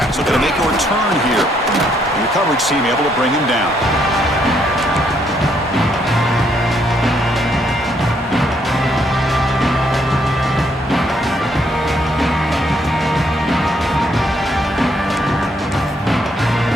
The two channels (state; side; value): normal; both; correlation 0.71